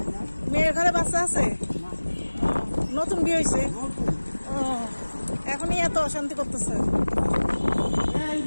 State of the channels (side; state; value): both; inverted; correlation -1.00